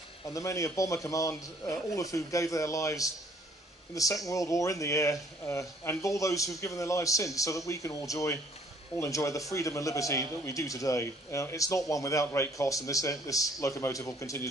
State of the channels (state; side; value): normal; both; correlation 0.60